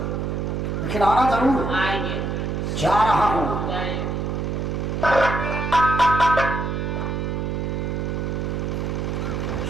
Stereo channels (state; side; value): noise; right; hum, 1 dB below the sound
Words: लेकिन आना जरूर। आएंगे। जा रहा हूँ।